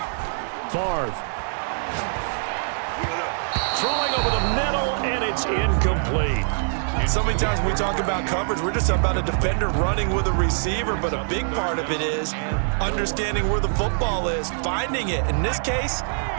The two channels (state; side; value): silent; left; digital silence